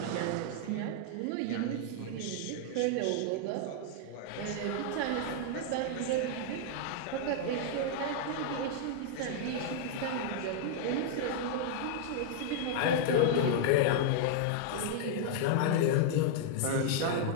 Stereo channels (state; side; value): different; both; correlation -0.01